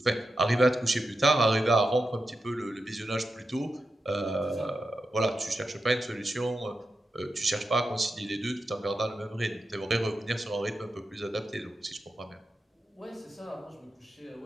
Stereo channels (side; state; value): both; normal; correlation 0.89